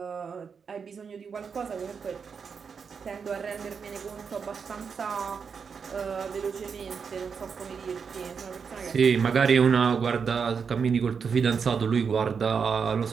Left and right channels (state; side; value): quieter; left; 6.1 dB